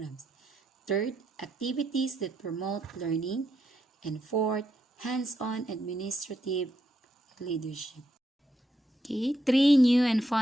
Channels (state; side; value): normal; both; correlation 0.80